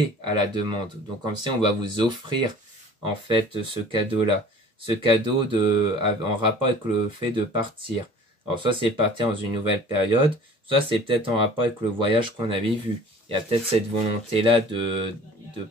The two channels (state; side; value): normal; both; correlation 0.46